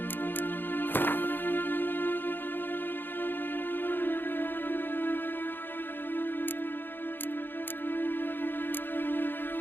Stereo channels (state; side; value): late; right; 0.097 ms